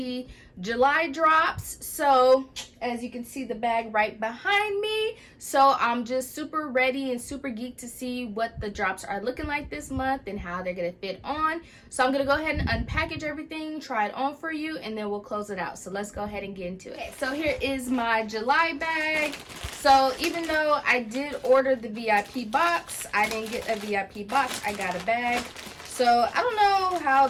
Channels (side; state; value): both; identical; correlation 1.00